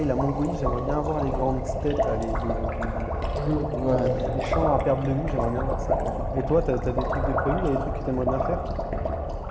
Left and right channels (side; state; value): both; identical; correlation 1.00